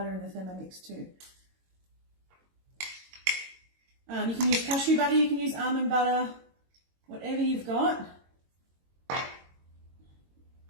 in the Thermomix too. You can use cashew butter, you can use almond butter, whatever you've got.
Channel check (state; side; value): late; left; 22 ms